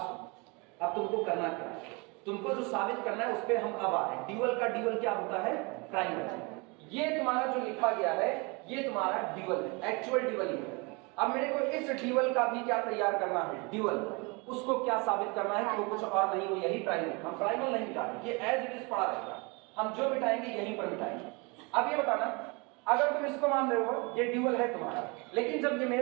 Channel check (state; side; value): quieter; left; 28.9 dB